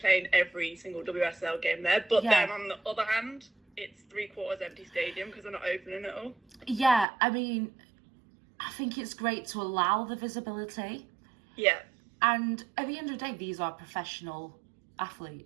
every single WSL game there. But then on the other hand, it's 3/4 empty stadium because they're not opening it all. Yeah, I mean, I think it's great to allow the visibility. Yeah. And at the end of the day, these are professional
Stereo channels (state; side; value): drops out; left; at 7.1 s